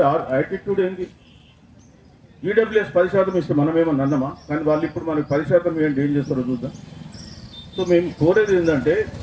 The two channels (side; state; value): both; identical; correlation 1.00